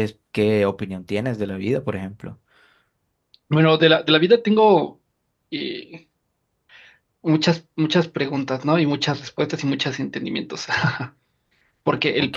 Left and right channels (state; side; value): identical; both; correlation 1.00